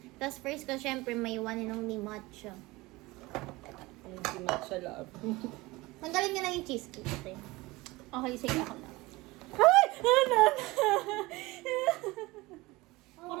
Tapos first ko, syempre, may one inong ni matcha. Hindi matcha love. Tanggalin niya lang yung cheesecake. Okay, sige ako na. Ay! Ano?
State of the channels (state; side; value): quieter; left; 21.4 dB